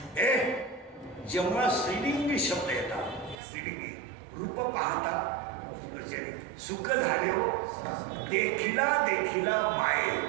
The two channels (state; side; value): drops out; left; at 3.4 s